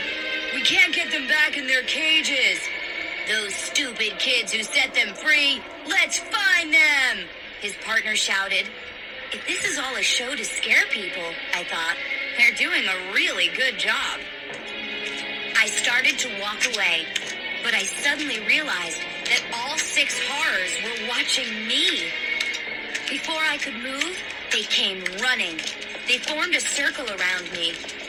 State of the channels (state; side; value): identical; both; correlation 1.00